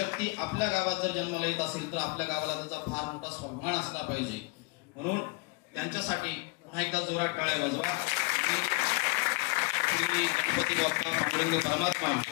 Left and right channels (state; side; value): quieter; right; 28.5 dB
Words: आपल्या गावात जर जन्माला येत असेल तर आपल्या गावाला त्याचा फार मोठा स्वाभिमान असला पाहिजे. म्हणून त्यांच्यासाठी पुन्हा एकदा जोरात टाळ्या वाजवा. गणपती बाप्पा पांडुरंग परमात्मा,